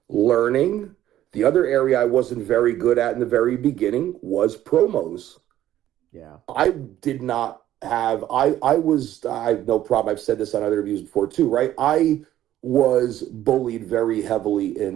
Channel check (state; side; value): quieter; left; 12.8 dB